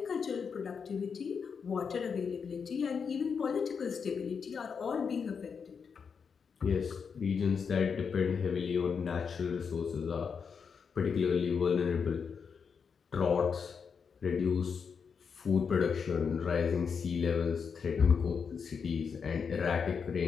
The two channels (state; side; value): quieter; right; 6.1 dB